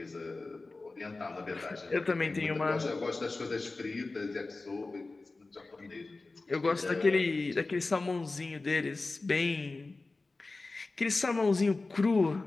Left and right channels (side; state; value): right; quieter; 3.4 dB